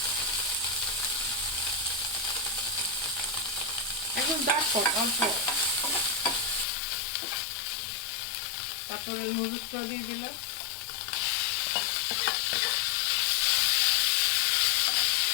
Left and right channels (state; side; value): drops out; right; at 6.7 s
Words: এখন দেখো অল্প, তারপরে নুডলসটা দিয়ে দিলাম।